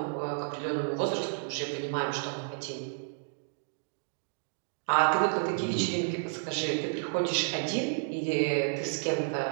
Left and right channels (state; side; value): silent; left; digital silence